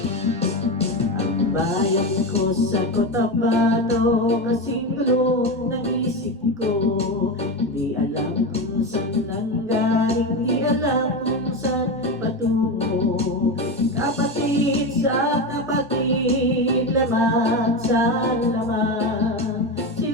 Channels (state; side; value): normal; both; correlation 0.18